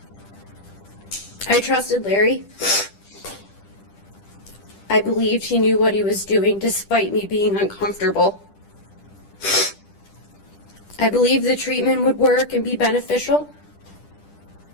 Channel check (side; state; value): right; late; 10 ms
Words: I trusted Larry. I believed he knew what he was doing despite me being uncomfortable. I believed the treatment would work and be beneficial.